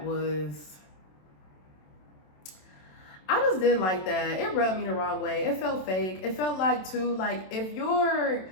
was... I just didn't like that. It rubbed me the wrong way. It felt fake. It felt like, too, like, if your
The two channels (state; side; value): late; right; 27 ms